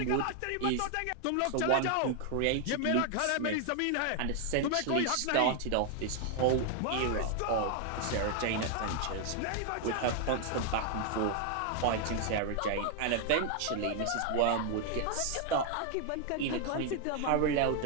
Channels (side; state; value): both; different; correlation 0.00